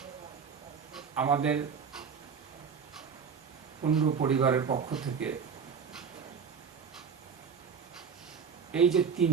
আমাদের কুণ্ডু পরিবারের পক্ষ থেকে এই যে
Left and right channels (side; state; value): left; quieter; 6.4 dB